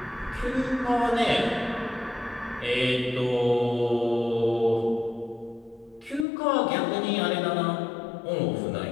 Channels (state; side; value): drops out; right; at 6.2 s